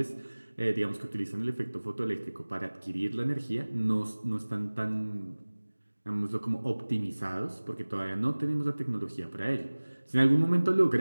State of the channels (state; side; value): inverted; both; correlation -1.00